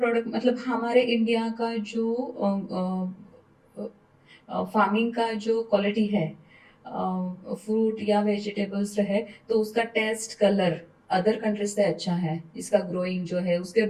मतलब हमारे इंडिया का जो फार्मिंग का जो क्वालिटी है फ्रूट या वेजिटेबल्स है तो उसका टेस्ट कलर अदर कंट्रीज से अच्छा है। इसका ग्रोइंग जो है उसके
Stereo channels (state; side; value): identical; both; correlation 1.00